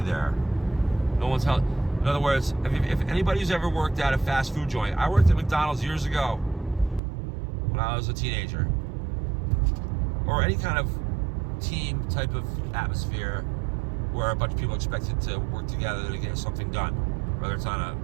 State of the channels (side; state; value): left; drops out; at 7.0 s